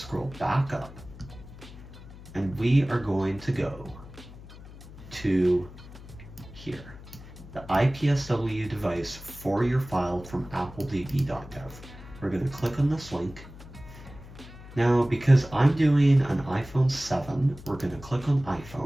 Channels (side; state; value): left; noise; hum, 17 dB below the sound